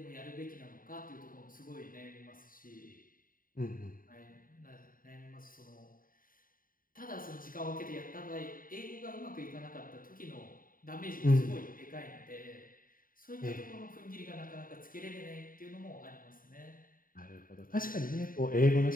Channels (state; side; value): late; right; 0.41 ms